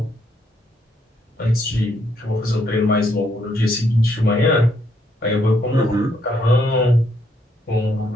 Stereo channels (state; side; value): normal; both; correlation 0.73